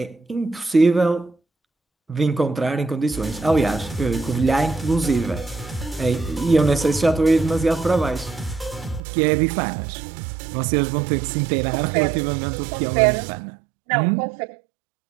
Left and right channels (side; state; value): left; drops out; at 9.0 s